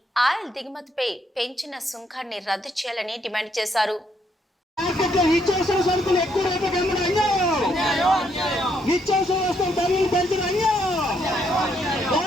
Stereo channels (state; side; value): normal; both; correlation 0.73